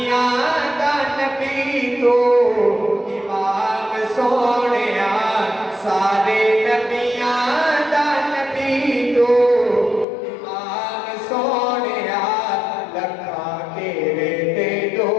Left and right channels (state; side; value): drops out; right; at 10.1 s